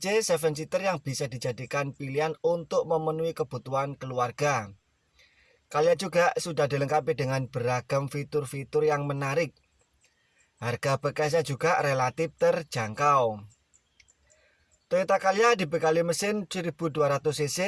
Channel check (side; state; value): both; identical; correlation 1.00